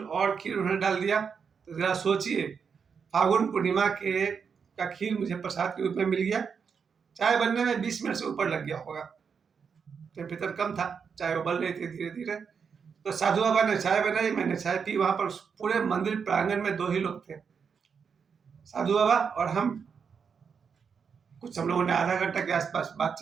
और खीर उन्होंने डाल दिया। तो जरा सोचिए, फागुन पूर्णिमा के का खीर मुझे प्रसाद के रूप में मिल गया। चाय बनने में 20 मिनट से ऊपर लग गया होगा, टेम्परेचर कम था, चाय उबल रही थी धीरे धीरे। तो साधु बाबा ने चाय बनाई, मैंने चाय पी। वहां पर पूरे मंदिर प्रांगण में 2 ही लोग थे, साधु बाबा और हम। कुछ हम लोगों ने आधा घंटा के आसपास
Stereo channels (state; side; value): quieter; left; 6.3 dB